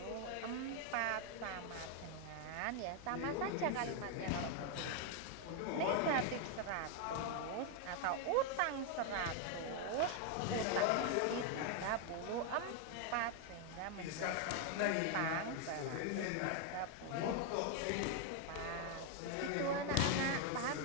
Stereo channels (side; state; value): both; different; correlation 0.01